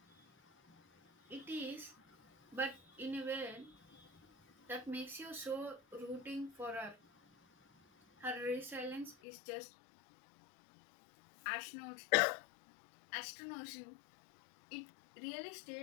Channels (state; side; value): drops out; right; at 9.2 s